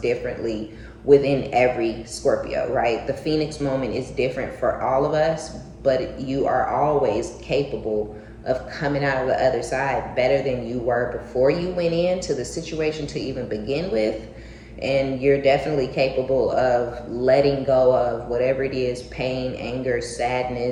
differently within every Scorpio, right? The Phoenix moment is different for all of us, but you are always capable of coming out of the other side better than you were before you went into the situation to even begin with. And you're definitely capable of letting go of whatever it is, pain, anger,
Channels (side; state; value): both; identical; correlation 1.00